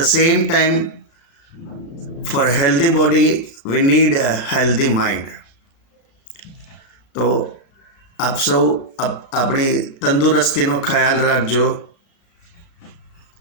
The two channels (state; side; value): late; right; 35 ms